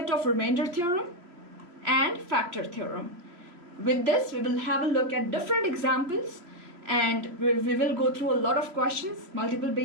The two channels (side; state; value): left; late; 2.9 ms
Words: of remainder theorem and factor theorem. With this, we will have a look at different examples, and we will go through a lot of questions, multiple